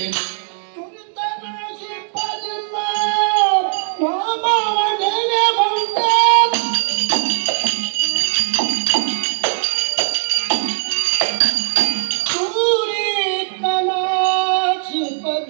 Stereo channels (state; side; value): silent; left; digital silence